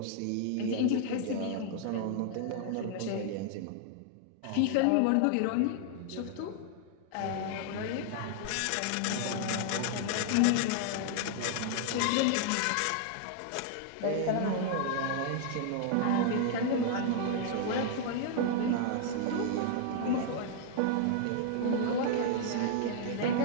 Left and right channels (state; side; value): different; both; correlation -0.01